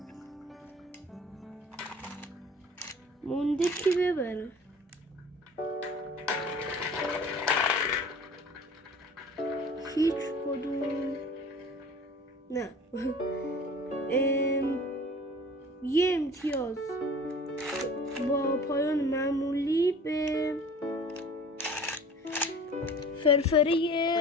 مونده کی ببره. هیچ کدوم نه. یه امتیاز با پایان معمولی به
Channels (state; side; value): normal; both; correlation 0.44